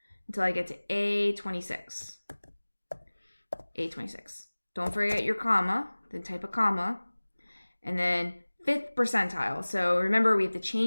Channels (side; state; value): both; inverted; correlation -1.00